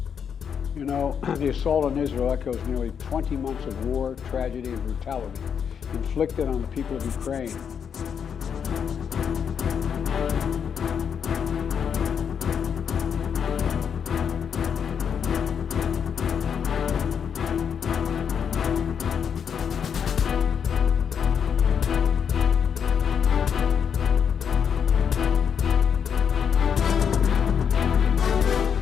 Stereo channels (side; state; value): right; quieter; 7.4 dB